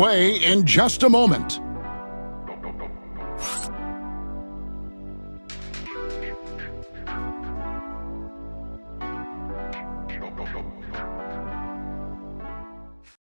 in just a moment.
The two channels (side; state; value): both; inverted; correlation -1.00